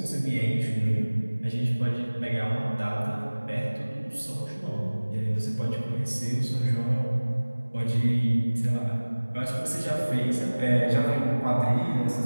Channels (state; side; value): inverted; both; correlation -1.00